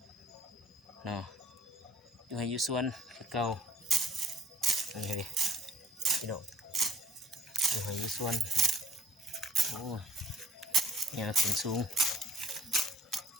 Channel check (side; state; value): both; normal; correlation 0.58